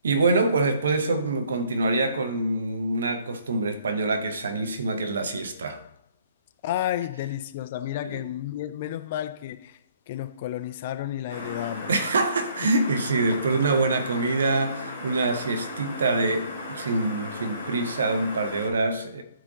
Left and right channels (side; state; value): both; inverted; correlation -0.62